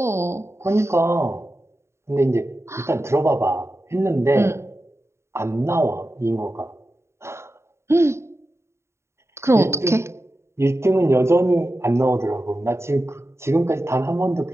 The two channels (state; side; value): late; left; 0.13 ms